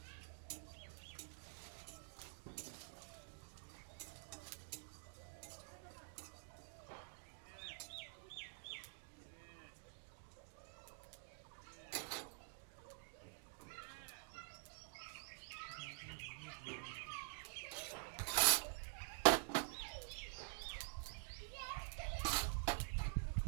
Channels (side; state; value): left; silent; digital silence